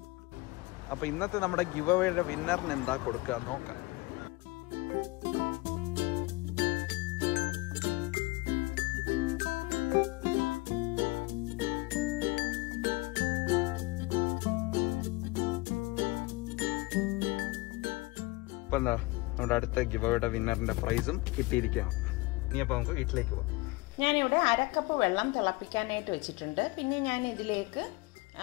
അപ്പോൾ ഇന്നത്തെ നമ്മുടെ ഗിവ് അവേയുടെ വിന്നറിന് എന്താ കൊടുക്കുക നോക്കാം. ഇപ്പം എന്താ നമ്മുടെ അടുത്ത ഗിവ് അവേയുടെ വിന്നറിന്റെ പ്രൈസും കിട്ടിയിരിക്കുകയാണ്. ഇനി അപ്പോൾ നമുക്ക് വീട്ടിലേക്ക് പോവാം. ഞാനിവിടെ 1/2 കപ്പ് വെള്ളം തിളപ്പിക്കാനായിട്ട് വെച്ചിട്ടുണ്ട്. പിന്നെ ഞാൻ ഇതിലേക്ക്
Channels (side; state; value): right; quieter; 22.6 dB